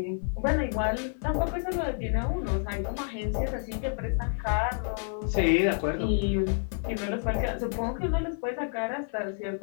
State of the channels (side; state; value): right; silent; 58 dB below the other